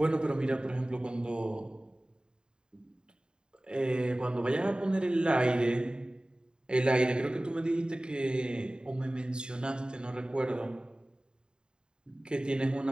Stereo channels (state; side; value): late; left; 0.048 ms